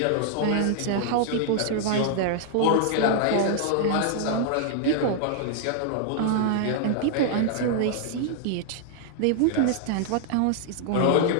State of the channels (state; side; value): different; both; correlation -0.01